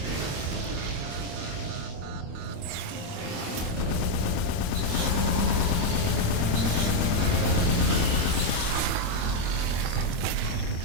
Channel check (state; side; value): late; left; 25 ms